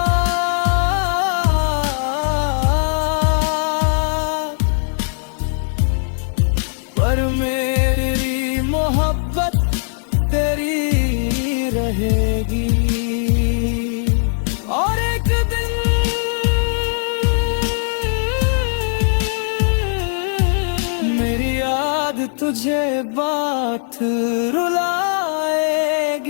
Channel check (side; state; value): right; silent; digital silence